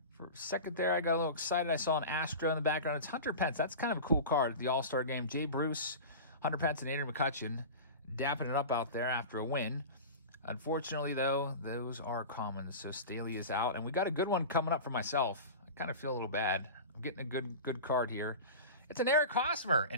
for a second there, I got a little excited. I saw an Astro in the background. It's Hunter Pence. That's kind of a cool card at the All-Star game. Jay Bruce, Hunter Pence, and Adrian McCutcheon dapping it up out there after a win. Unfortunately, though, those are common, so Staley is out. And we got a good one coming up for myself. I kind of feel a little bad. I'm getting a good card here. It's an Eric Hosmer.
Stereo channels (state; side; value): inverted; both; correlation -0.30